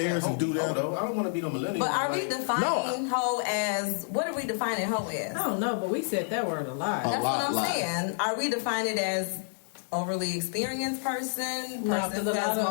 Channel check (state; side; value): silent; right; 59 dB below the other